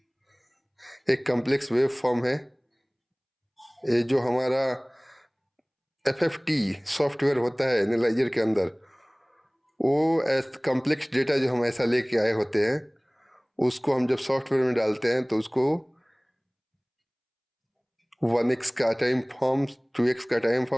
एक कॉम्प्लेक्स वेव फॉर्म है। ये जो हमारा FFT सॉफ्टवेयर होता है एनालाइजर के अंदर, वो कॉम्प्लेक्स डेटा जो हम ऐसा लेके आए होते हैं उसको हम जब सॉफ्टवेयर में डालते हैं तो उसको 1x का टाइम फॉर्म, 2x का टाइम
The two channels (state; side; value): identical; both; correlation 1.00